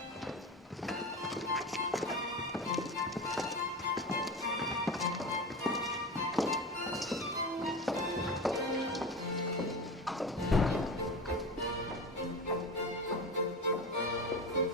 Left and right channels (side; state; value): both; normal; correlation 0.27